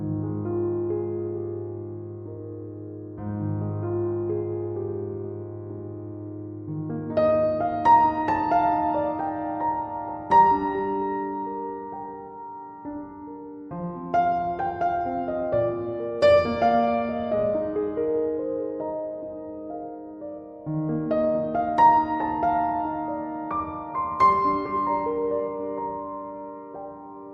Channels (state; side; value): identical; both; correlation 1.00